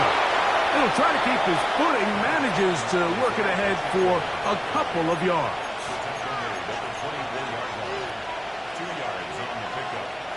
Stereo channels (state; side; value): noise; left; hum, 29 dB below the sound